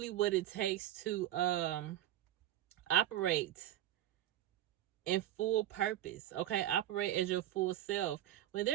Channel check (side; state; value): left; quieter; 12.8 dB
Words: what it takes to operate in full purpose. Okay, operate as your full self. When